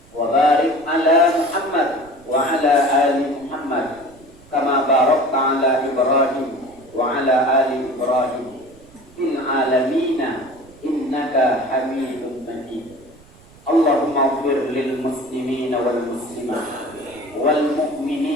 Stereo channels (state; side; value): noise; right; rumble, 25 dB below the sound